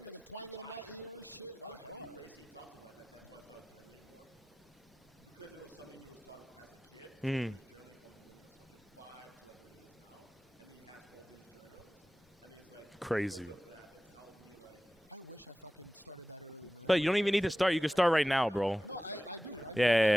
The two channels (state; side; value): normal; both; correlation 0.95